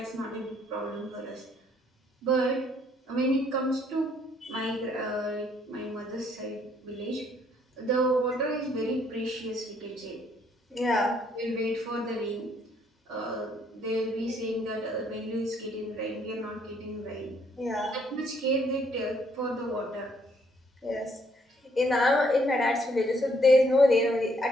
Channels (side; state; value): both; normal; correlation 0.67